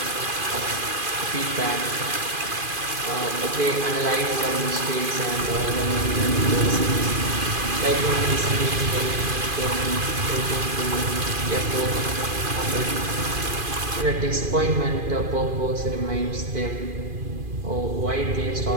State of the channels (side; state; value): left; late; 2.5 ms